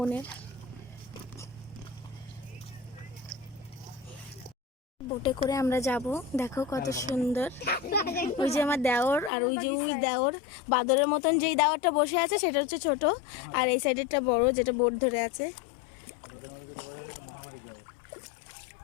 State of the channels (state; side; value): drops out; right; at 9.3 s